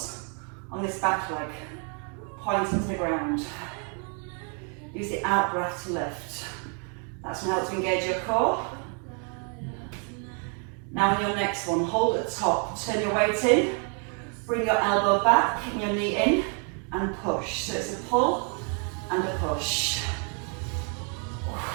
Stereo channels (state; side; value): quieter; left; 39.5 dB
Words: on this back leg, pointing to the ground. Use the out breath to lift. That's going to help to engage your core. Now on your next one, hold at the top, turn your weight in, bring your elbow back and your knee in, and push. So it's a pull and a push.